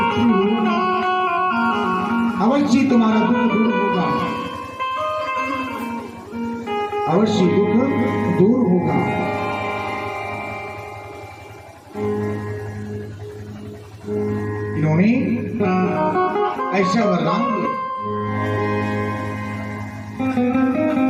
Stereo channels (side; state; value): both; identical; correlation 1.00